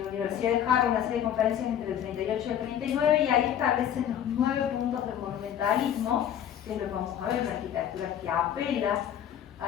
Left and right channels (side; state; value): right; quieter; 9.9 dB